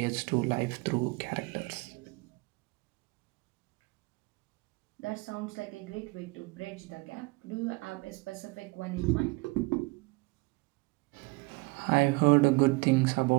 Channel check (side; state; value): left; quieter; 25.8 dB